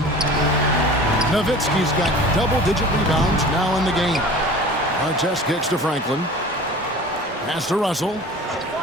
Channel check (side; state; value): both; normal; correlation 0.41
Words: Nowitzki's got double-digit rebounds now in the game. Artest kicks to Franklin. Pass to Russell.